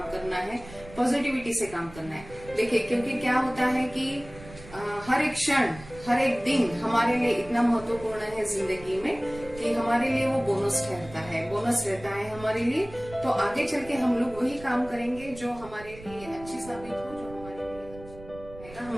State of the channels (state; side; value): noise; right; rumble, 18 dB below the sound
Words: करना है, पॉजिटिविटी से काम करना है। देखिए, क्योंकि क्या होता है कि हर एक क्षण, हर एक दिन हमारे लिए इतना महत्वपूर्ण है जिंदगी में कि हमारे लिए वो बोनस रहता है हमारे लिए। तो आगे चल के हम लोग वही काम करेंगे जो हमारे लिए अच्छी साबित हो, जो